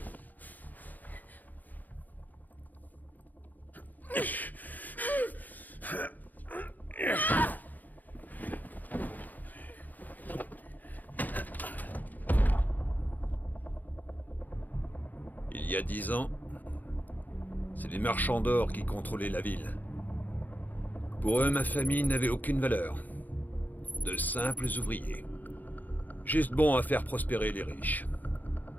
Il y a 10 ans, c'est les marchands d'or qui contrôlaient la ville. Pour eux, ma famille n'avait aucune valeur. De simples ouvriers. Juste bons à faire prospérer les riches.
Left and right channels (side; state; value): right; late; 0.083 ms